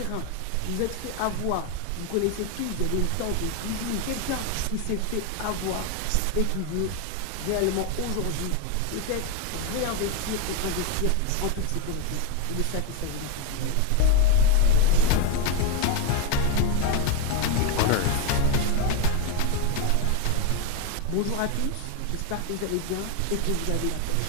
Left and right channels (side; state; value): both; different; correlation 0.02